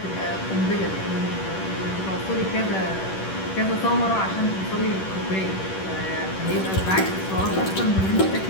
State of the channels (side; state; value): right; late; 10 ms